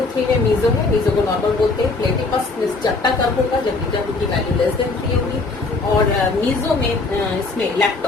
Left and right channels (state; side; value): quieter; right; 3.7 dB